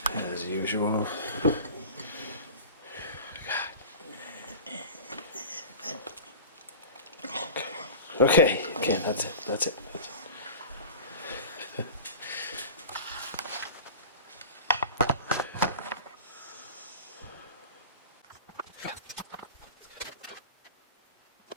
as usual. Okay, that's it, that's it.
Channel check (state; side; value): inverted; both; correlation -0.34